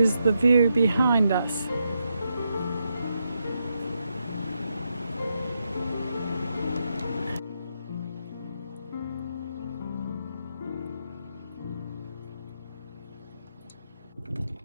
the view behind us.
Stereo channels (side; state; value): both; inverted; correlation -0.83